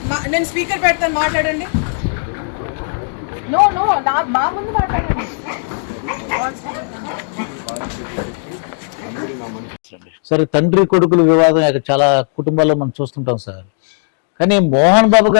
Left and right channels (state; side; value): silent; right; digital silence